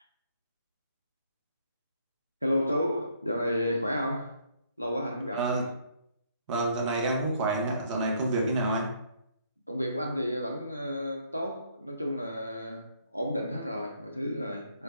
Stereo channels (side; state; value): both; inverted; correlation -0.68